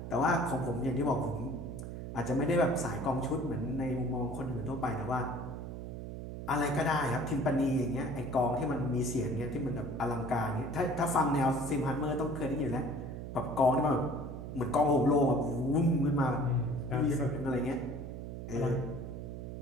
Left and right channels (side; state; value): right; noise; hum, 8 dB below the sound